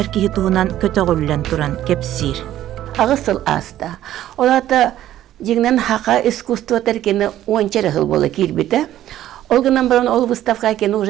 киһи туһунан көтөгүллен туран кепсир. Агысыл аста. Олата жигнен хака искусство теркени ончары хыл бола кирбите. Олгынан баран ол выставка кені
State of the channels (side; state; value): left; quieter; 12.8 dB